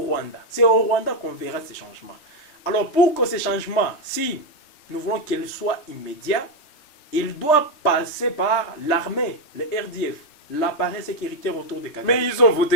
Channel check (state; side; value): late; right; 3.3 ms